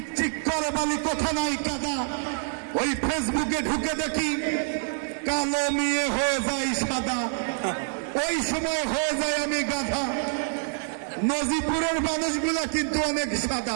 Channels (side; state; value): left; silent; 61 dB below the other